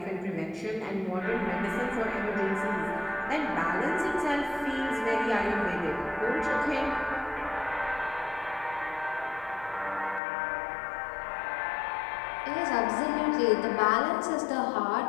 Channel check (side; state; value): right; drops out; at 10.2 s